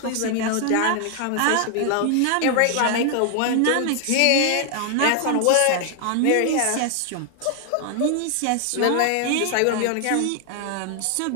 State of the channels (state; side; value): different; both; correlation 0.00